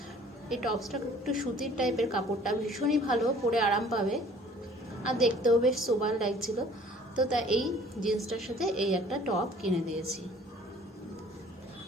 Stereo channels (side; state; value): both; normal; correlation 0.53